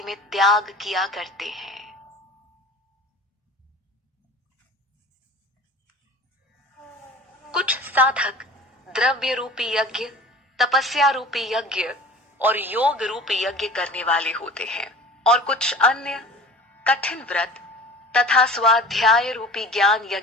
में त्याग किया करते हैं। कुछ साधक द्रव्य रूपी यज्ञ, तपस्या रूपी यज्ञ और योग रूपी यज्ञ करने वाले होते हैं, और कुछ अन्य कठिन व्रत तथा स्वाध्याय रूपी ज्ञान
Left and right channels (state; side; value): normal; both; correlation 0.41